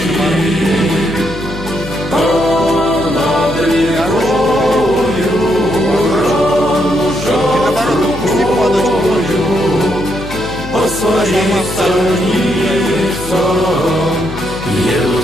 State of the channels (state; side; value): noise; left; hum, 12 dB below the sound